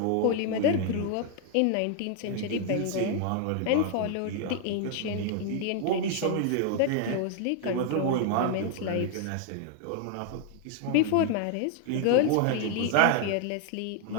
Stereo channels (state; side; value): different; both; correlation 0.00